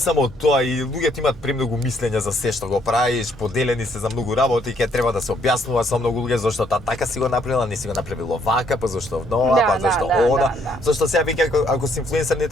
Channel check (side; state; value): both; normal; correlation 0.68